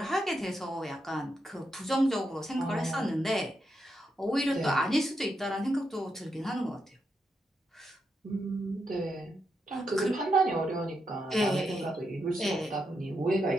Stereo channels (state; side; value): normal; both; correlation 0.83